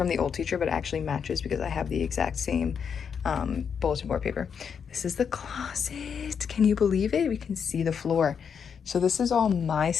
the old teacher, but it actually matches because I have the exact same bulletin board paper. This is the closet. Can you believe it? We can see the floor. So this is all my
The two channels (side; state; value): right; quieter; 6.9 dB